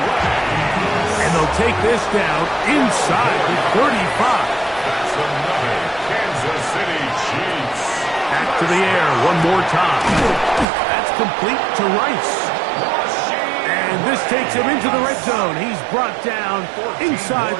And they'll take this down inside the 35. That's another Kansas City Chiefs. Back to the air one more time. That's complete to Rice. And this takes him into the red zone. He's brought down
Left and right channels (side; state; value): left; drops out; at 10.7 s